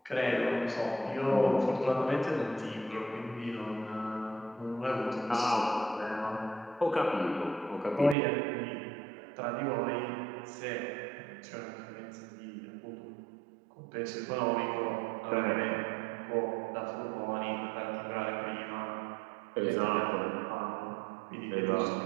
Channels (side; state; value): left; drops out; at 8.2 s